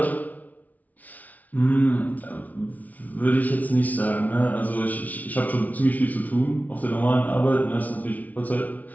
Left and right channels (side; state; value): right; late; 0.074 ms